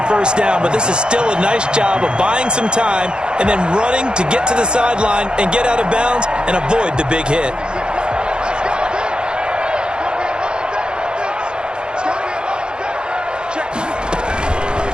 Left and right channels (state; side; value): late; left; 0.049 ms